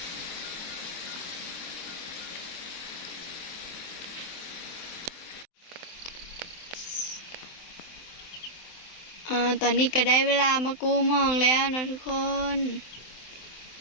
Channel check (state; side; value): late; right; 23 ms